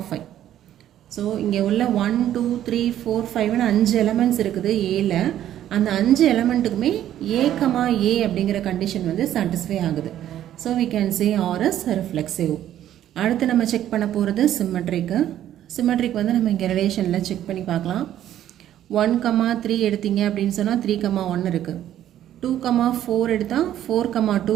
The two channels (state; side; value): quieter; left; 11.7 dB